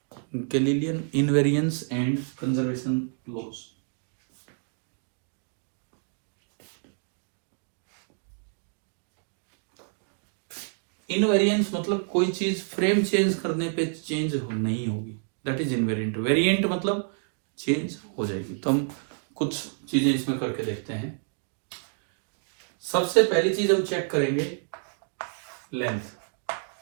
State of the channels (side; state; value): left; silent; 56 dB below the other